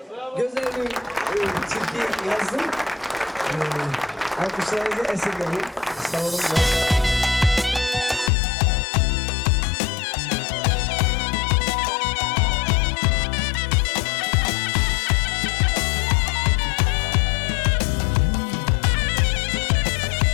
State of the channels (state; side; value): drops out; right; at 8.3 s